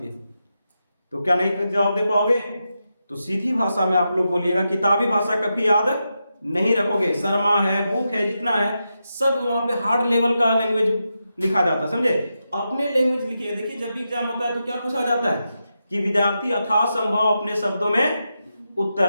हैं। तो क्या नहीं जवाब दे पाओगे? तो सीधी भाषा में आप लोग बोलिएगा, किताबी भाषा कभी याद नहीं रखोगे। शर्मा है, बुक है, जितना है सब वहां पे हार्ड लेवल का लैंग्वेज लिखा जाता है। समझे? अपने लैंग्वेज लिखिए। देखिए, जब भी एग्जाम होता है तो क्या पूछा जाता है कि विद्यार्थी यथासंभव अपने शब्दों में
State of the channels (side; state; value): both; inverted; correlation -0.87